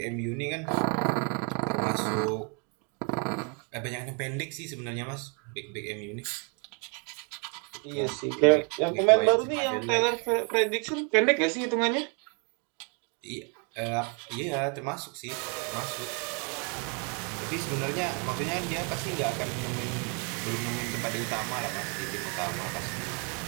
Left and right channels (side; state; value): left; quieter; 36.8 dB